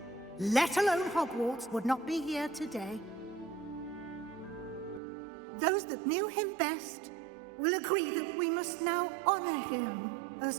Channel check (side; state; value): left; drops out; at 5.0 s